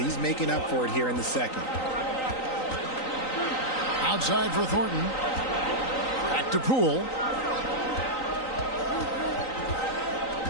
making up for it here in the second. Outside for Thornton. Back to Poole.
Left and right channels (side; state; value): right; late; 3.9 ms